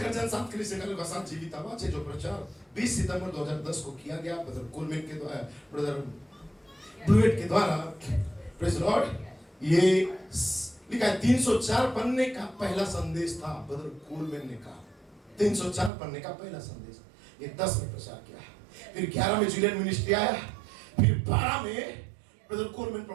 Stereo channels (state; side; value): drops out; left; at 15.9 s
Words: गर्जन, 7 कलीसिया कालों का 7 जीवित आवाज है, जो प्रचार 20 सितंबर 2010 को किया गया ब्रदर कोलमैन के द्वारा, ब्रदर ब्लूएट के द्वारा। Praise Lord. ये लिखा है 304 पन्ने का पहला संदेश था, ब्रदर कोलमैन ने कहा 304 पन्ने का पहला संदेश। ये 10 में प्रचार किया, फिर 11 में जुलियन मिनिस्ट्री आया, फिर 12 में ब्रदर कोलमैन